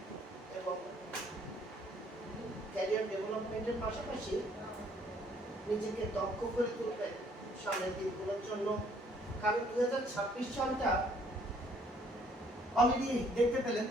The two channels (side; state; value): both; normal; correlation 0.63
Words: এবং ক্যারিয়ার ডেভেলপমেন্টের পাশাপাশি নিজেকে দক্ষ করে তুলবেন সামনের দিনগুলোর জন্য। কারণ 2026 সালটা অলরেডি দেখতে পেলেন